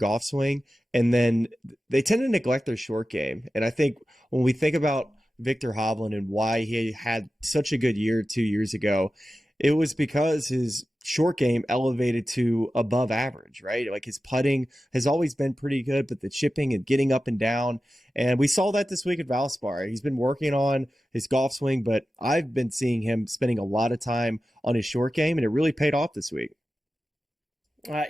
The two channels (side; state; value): both; normal; correlation 0.94